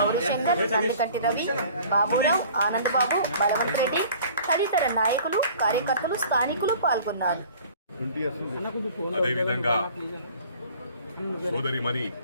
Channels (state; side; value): inverted; both; correlation -0.48